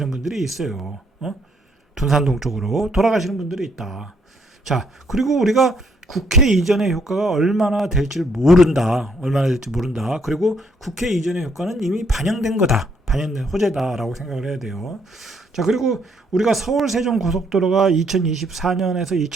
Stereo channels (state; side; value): normal; both; correlation 0.70